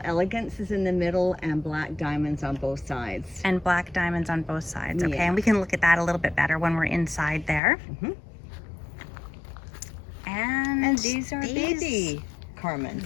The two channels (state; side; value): drops out; right; at 7.6 s